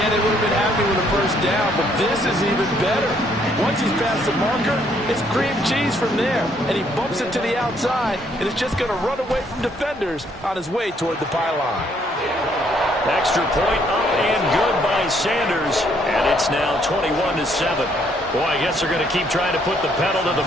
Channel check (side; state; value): both; normal; correlation 0.68